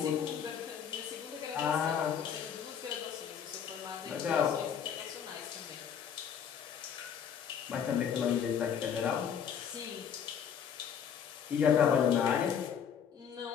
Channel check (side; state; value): right; quieter; 7.9 dB